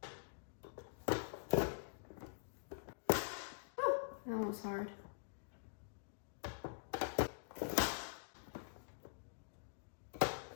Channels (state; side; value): silent; right; digital silence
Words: Oh, that was hard.